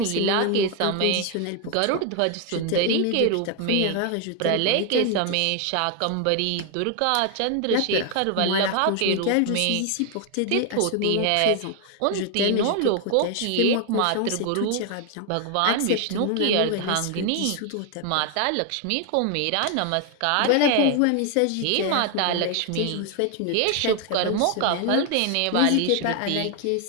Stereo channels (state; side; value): different; both; correlation 0.01